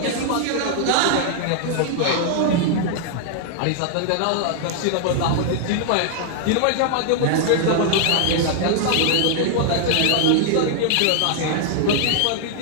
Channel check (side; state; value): both; different; correlation 0.00